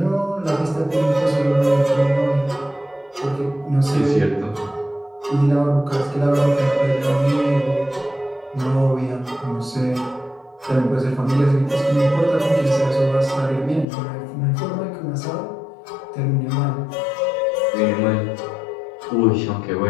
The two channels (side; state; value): right; drops out; at 13.9 s